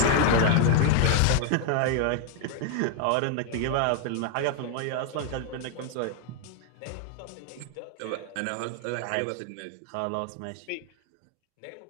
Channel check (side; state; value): both; different; correlation 0.00